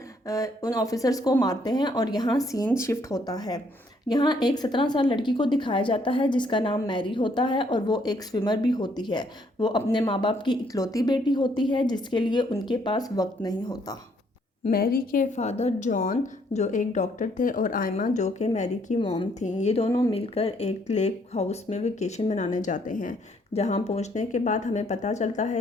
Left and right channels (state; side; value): normal; both; correlation 0.68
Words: उन ऑफिसर्स को मारते हैं और यहाँ सीन शिफ्ट होता है। यहाँ एक 17 साल लड़की को दिखाया जाता है जिसका नाम मैरी होता है और वो एक स्विमर भी होती है। वो अपने माँ बाप की इकलौती बेटी होती है जिसके लिए उनके पास वक्त नहीं होता। मैरी के फादर जॉन जो एक डॉक्टर थे और आयमा जो कि मैरी की मॉम थी, ये दोनों मिलकर एक लेक हाउस में वेकेशन मनाने जाते हैं। जहां पहुंचने के बाद हमें पता चलता